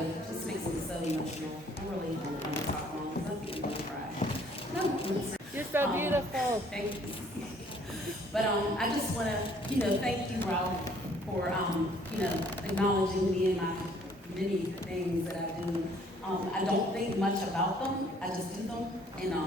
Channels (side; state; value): both; normal; correlation 0.60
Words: just makes me so emotional. I really don't want to talk long because I think I'm going to cry. No, You're so beautiful. Thank you. But I just want to, thank you, Rob, for, acknowledging me and my many things that I do. I don't think much about them. I just do them. And